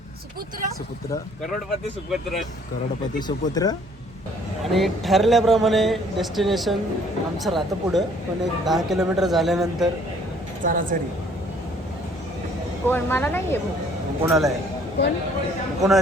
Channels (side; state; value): both; normal; correlation 0.59